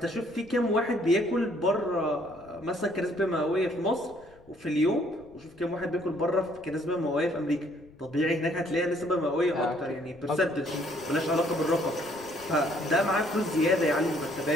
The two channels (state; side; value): noise; left; rumble, 27 dB below the sound